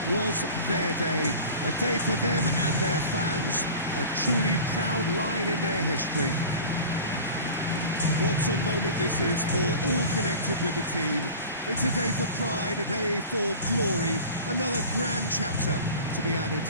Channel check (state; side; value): inverted; both; correlation -0.38